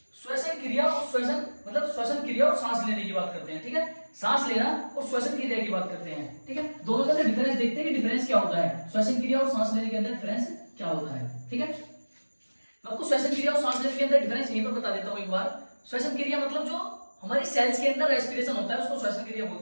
श्वसन क्रिया और श्वसन मतलब श्वसन क्रिया और सांस लेने की बात करते हैं। ठीक है, सांस लेना और श्वसन क्रिया की बात करते हैं। ठीक है, दोनों के अंदर डिफरेंस देखते हैं कि डिफरेंस क्या होता है, श्वसन क्रिया और सांस लेने के अंदर डिफरेंस क्या होता है। ठीक है, आपको श्वसन क्रिया और सांस लेने के अंदर डिफरेंस यहीं पर बता देता हूं एक बार। श्वसन क्रिया मतलब जो हमारी सेल्स के अंदर रेस्पिरेशन होता है उसको श्वसन क्रिया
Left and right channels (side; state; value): both; inverted; correlation -1.00